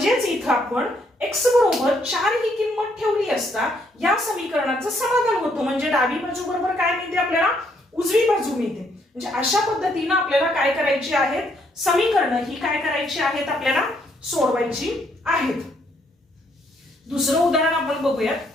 इथं आपण x बरोबर 4 ही किंमत ठेवली असता या समीकरणाचं समाधान होतं. म्हणजे डावी बाजू बरोबर काय मिळते आपल्याला, उजवी बाजू मिळते. म्हणजे अशा पद्धतीने आपल्याला काय करायची आहेत, समीकरणं ही काय करायची आहेत, आपल्याला सोडवायची आहेत. दुसरं उदाहरण आपण बघूयात.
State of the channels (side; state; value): both; normal; correlation 0.71